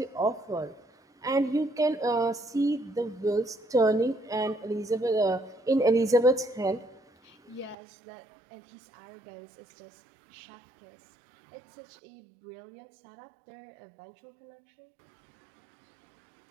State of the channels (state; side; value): drops out; left; at 7.8 s